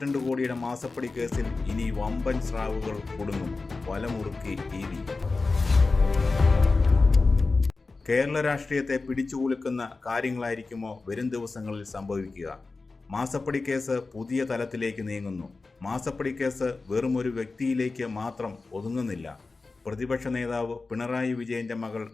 കോടിയുടെ മാസപ്പടി കേസിൽ ഇനി വമ്പൻ സ്രാവുകൾ കുടുങ്ങും. വലമുറുക്കി ED. കേരള രാഷ്ട്രീയത്തെ പിടിച്ചുകുലുക്കുന്ന കാര്യങ്ങളായിരിക്കുമോ വരും ദിവസങ്ങളിൽ സംഭവിക്കുക? മാസപ്പടി കേസ് പുതിയ തലത്തിലേക്ക് നീങ്ങുന്നു. മാസപ്പടി കേസ് വെറും ഒരു വ്യക്തിയിലേക്ക് മാത്രം ഒതുങ്ങുന്നില്ല. പ്രതിപക്ഷ നേതാവ് പിണറായി വിജയന്റെ മകൾ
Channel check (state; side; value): quieter; right; 3.8 dB